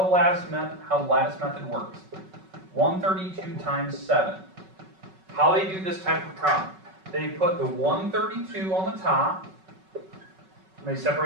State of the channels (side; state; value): left; late; 5.3 ms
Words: lattice method works. 132 times 7. How they do this type of problem. They put the 132 on the top, and they